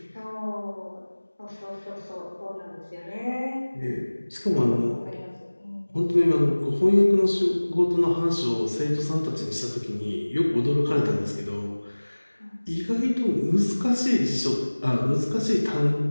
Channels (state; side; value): inverted; both; correlation -1.00